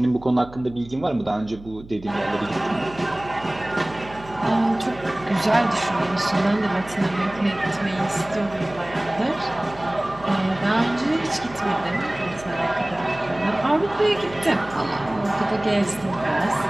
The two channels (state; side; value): noise; right; hum, 19 dB below the sound